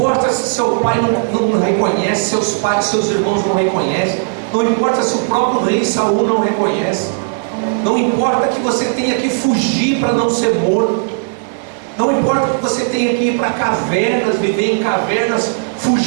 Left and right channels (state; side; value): silent; left; digital silence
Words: se seu pai não reconhece, seus pais, seus irmãos não reconhecem. Não importa se o próprio rei Saul não reconhece. Não importa que você tenha que fugir para não ser morto. Não importa que você tenha que ir para cavernas, viver em cavernas,